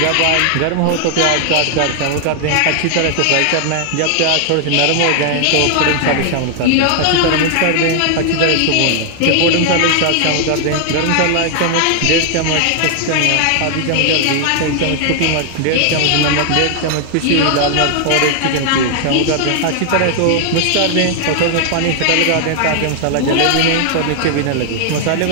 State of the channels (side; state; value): both; different; correlation 0.00